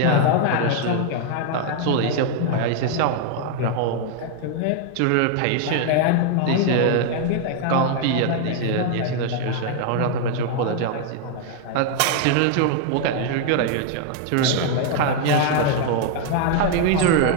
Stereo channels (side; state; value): both; different; correlation 0.00